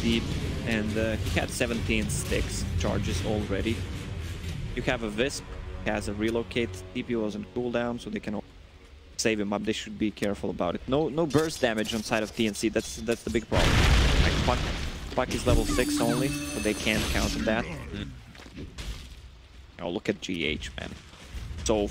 and he had 17 sticks charges already. You have a Wisp, has a Relocate, TP was on cooldown, so they can save him up. They should be careful about it. No burst damage on side of TNC. That's the big problem. Like, Puck is level 6 only, so they can't counter that. Oh, look at GH, man. So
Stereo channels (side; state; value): both; identical; correlation 1.00